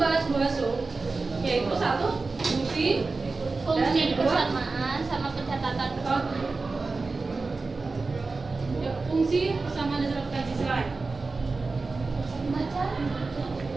yaitu satu fungsi Fungsi dan dua persamaan sama pencatatan ya, fungsi persamaan dasar akuntansi selain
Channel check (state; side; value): quieter; left; 3.9 dB